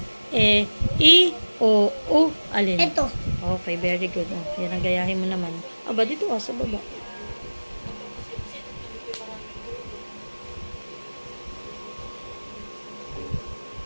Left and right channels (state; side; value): inverted; both; correlation -1.00